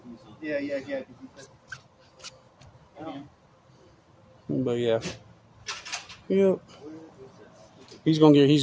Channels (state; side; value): identical; both; correlation 1.00